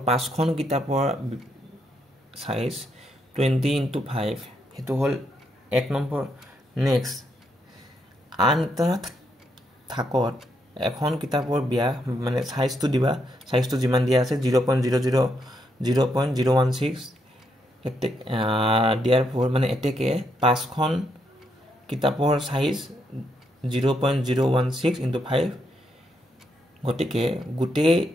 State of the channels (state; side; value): normal; both; correlation 0.78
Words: 5খন কিতাপৰ সাইজ 20 into 5 হেতু হল 1 নম্বৰ নেক্সট আন এটা থাকত এখন কিতাপৰ ব্যাস মানে সাইজটো দিবা সাইজটো যিমান দিয়া আছে 0.016 দিয়াৰ ফৰ মানে এতেকে 5খন কিতাপৰ সাইজ 0.016 into 5 গতিকে গুটে